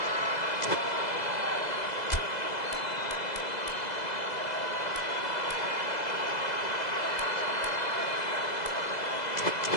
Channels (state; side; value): late; right; 2.0 ms